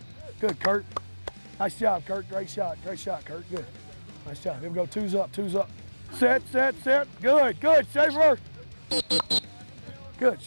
Good, Kurt. Nice job, Kurt. Great shot, Kurt. Good. Nice job. Here we go, two's up. Set. Good, Schaefer. Good,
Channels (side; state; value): both; inverted; correlation -1.00